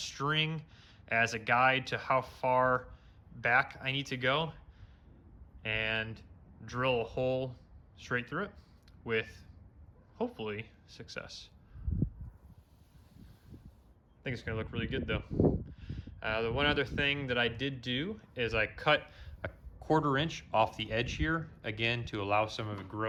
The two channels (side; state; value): both; identical; correlation 1.00